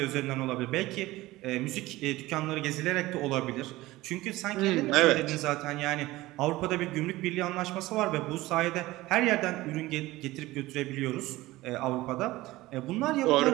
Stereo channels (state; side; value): quieter; left; 18.3 dB